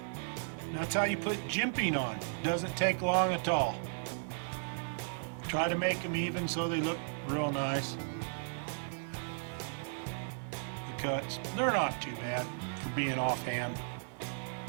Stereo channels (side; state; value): left; silent; 54 dB below the other